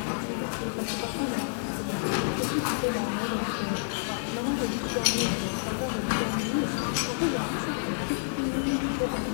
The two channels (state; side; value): silent; right; digital silence